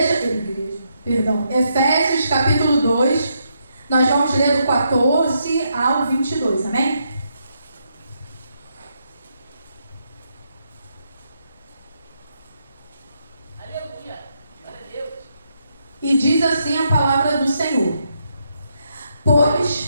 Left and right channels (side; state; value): both; inverted; correlation -0.79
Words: Efésios capítulo 2, nós vamos ler do 14 ao 22, amém? Aleluia. Glória a Deus. E diz assim a palavra do Senhor: